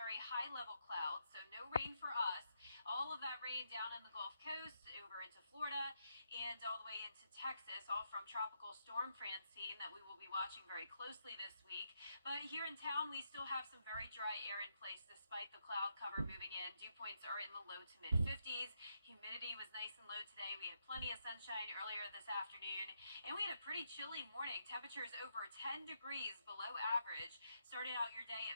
high level clouds, so no rain for us. All of that rain down in the Gulf Coast, over into Florida, and all the way into Texas, all from Tropical Storm Francine that we will be watching very closely this week. But here in town, we still have some very dry air in place despite the cloud cover moving in. Dew points are in the low to mid 50s. Humidity was nice and low today. We had plenty of sunshine earlier this afternoon, and we had a pretty chilly morning. Temperatures over 10 degrees below average. Started out your day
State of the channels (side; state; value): both; inverted; correlation -0.80